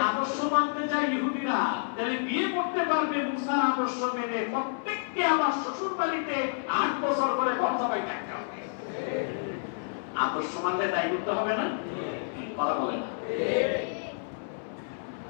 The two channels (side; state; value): right; silent; 58 dB below the other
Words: আদর্শ মানতে যায় ইহুদিরা, তাহলে বিয়ে করতে পারবে মুসার আদর্শ মেনে, প্রত্যেককে আমার শ্বশুর বাড়িতে 8 বছর করে ঘর জামাই থাকতে হবে। আদর্শ মানলে তাই করতে হবে না? কথা বলে না।